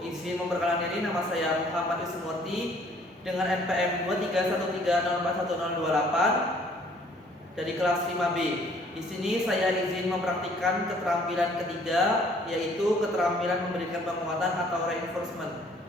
Izin memperkenalkan diri, nama saya Muhammad Ismurti dengan NPM 231304128 dari kelas 5B. Di sini saya izin mempraktikkan keterampilan ketiga, yaitu keterampilan memberikan penguatan atau reinforcement.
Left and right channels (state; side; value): normal; both; correlation 0.59